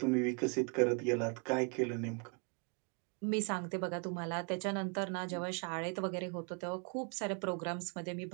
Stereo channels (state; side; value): quieter; left; 34.9 dB